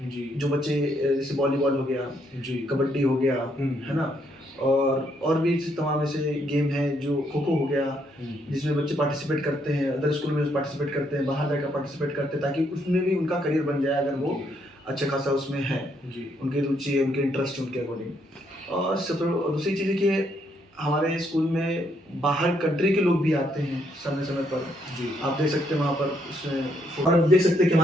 जी। जो बच्चे जैसे वॉलीबॉल हो गया, जी। कबड्डी हो गया, है ना, और भी तमाम ऐसे गेम हैं, जो खो खो हो गया, जिसमें बच्चे पार्टिसिपेट करते हैं, अदर स्कूल में पार्टिसिपेट करते हैं, बाहर जाकर पार्टिसिपेट करते हैं, ताकि उसमें भी उनका करियर बन जाए अगर वो अच्छा खासा उसमें है, उनकी रुचि है, उनके इंटरेस्ट उनके अकॉर्डिंग। और दूसरी चीज़ है कि हमारे स्कूल में बाहर कंट्री के लोग भी आते हैं समय समय पर। जी। आप देख सकते हैं वहाँ पर उसमें, और आप देख सकते हैं कि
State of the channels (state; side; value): normal; both; correlation 0.73